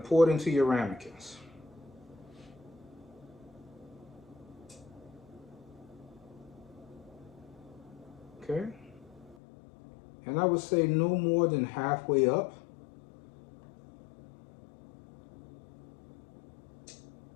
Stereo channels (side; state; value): right; drops out; at 9.3 s